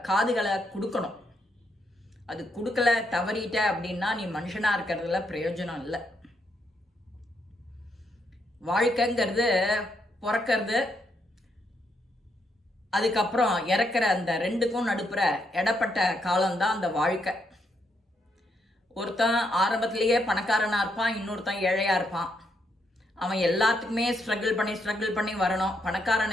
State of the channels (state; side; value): normal; both; correlation 0.78